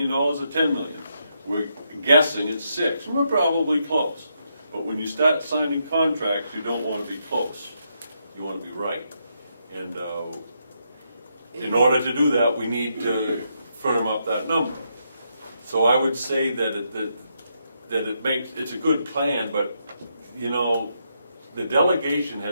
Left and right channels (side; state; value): both; inverted; correlation -0.79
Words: or $10 million. We're guessing it's 6. We're probably close. But when you start signing contracts, you don't want to be close. You want to be right. And In order to do that, we need to firm up that number. So I would say that it's a good plan, but, you know, the delegation